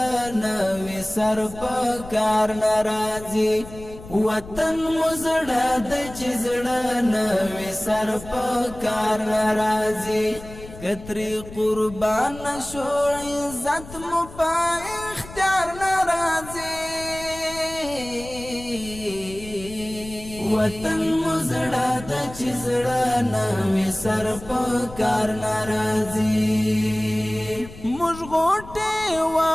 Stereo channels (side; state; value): left; noise; rumble, 15 dB below the sound